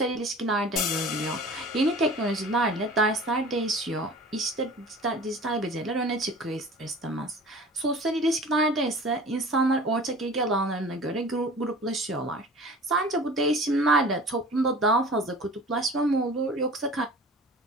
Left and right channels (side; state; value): both; normal; correlation 0.42